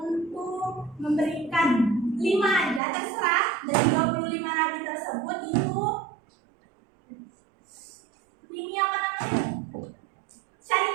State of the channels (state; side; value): drops out; left; at 2.8 s